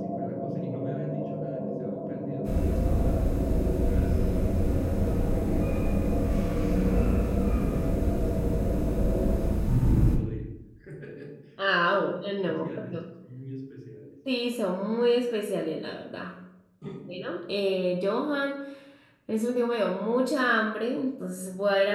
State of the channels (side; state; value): both; identical; correlation 1.00